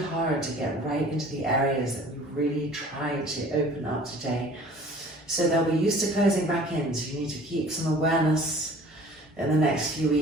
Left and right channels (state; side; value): normal; both; correlation 0.48